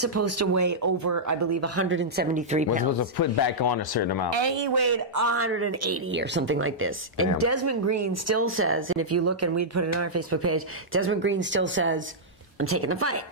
to weigh over, I believe, 173 pounds. Was supposed to put back on a certain amount. And he weighed 180 or something like this. Damn. And Desmond Green still says, and if you look, and we'd put it on our Facebook page, Desmond Green still says, I'm taking the fight.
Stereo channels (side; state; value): both; normal; correlation -0.10